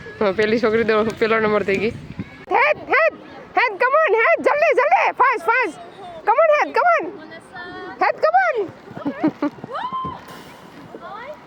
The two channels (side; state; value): both; identical; correlation 1.00